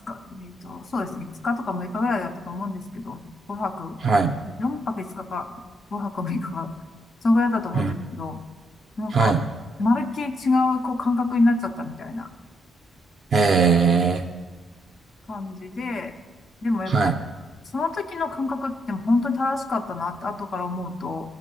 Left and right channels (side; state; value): both; normal; correlation 0.76